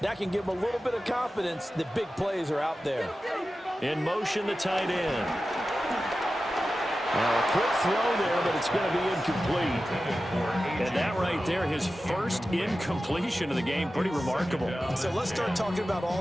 that can give them a little bit of confidence that big plays are out there. In motion, the tight end. Now a quick throw there, but it's going to be incomplete. And that right there, his first incompletion of the game, pretty remarkable. So let's start talking about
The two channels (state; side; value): normal; both; correlation 0.94